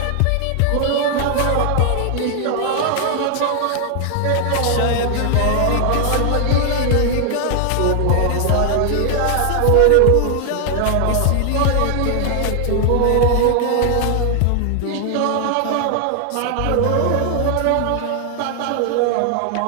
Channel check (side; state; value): both; different; correlation 0.00